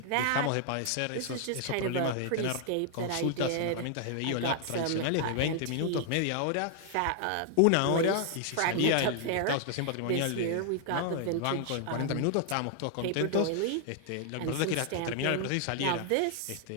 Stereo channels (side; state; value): both; different; correlation 0.00